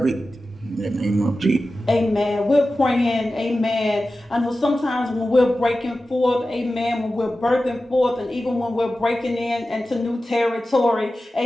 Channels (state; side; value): normal; both; correlation 0.94